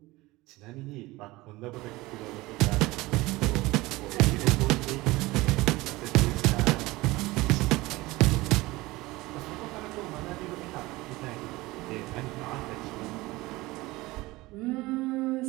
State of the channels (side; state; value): left; quieter; 20.3 dB